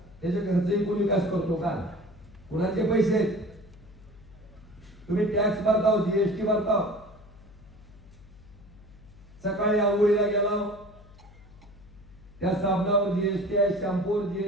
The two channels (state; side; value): noise; left; hum, 22 dB below the sound